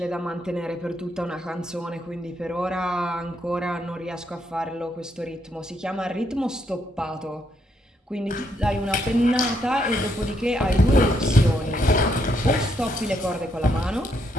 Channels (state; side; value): normal; both; correlation 0.75